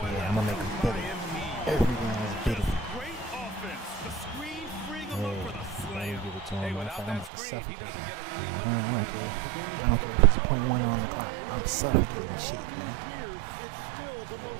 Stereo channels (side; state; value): left; drops out; at 7.3 s